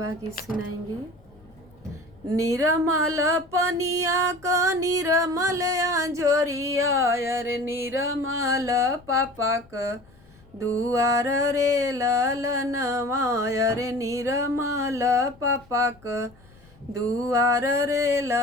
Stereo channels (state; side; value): noise; left; rumble, 27 dB below the sound